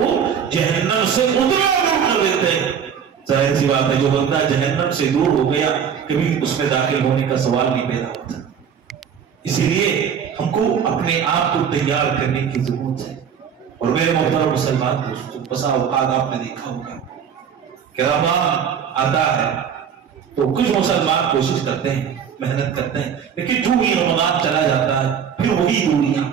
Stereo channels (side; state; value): left; quieter; 7.7 dB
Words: جہنم سے اتنا دور کر دیتے ہیں۔ ظاہر سی بات ہے جو بندہ جہنم سے دور ہو گیا کبھی اس میں داخل ہونے کا سوال نہیں پیدا ہوتا۔ اسی لیے ہم کو اپنے آپ کو تیار کرنے کی ضرورت ہے۔ اور میرے محترم مسلمان دوستوں، بسا اوقات آپ نے دیکھا ہوگا کہ رمضان آتا ہے تو کچھ مسلمان کوشش کرتے ہیں، محنت کرتے ہیں، لیکن جو ہی رمضان چلا جاتا ہے پھر وہی دوریاں،